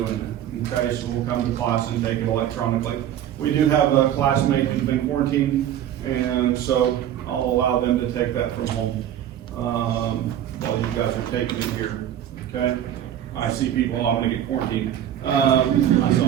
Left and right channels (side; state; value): left; quieter; 10.8 dB